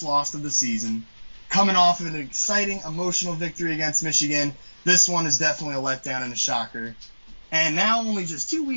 loss of the season. Coming off of an exciting, emotional victory against Michigan, this one is definitely a letdown and a shocker. And now, only just 2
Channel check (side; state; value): both; inverted; correlation -1.00